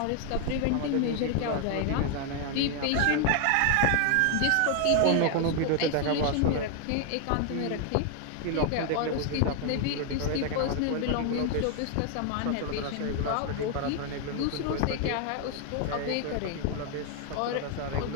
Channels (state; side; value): different; both; correlation 0.00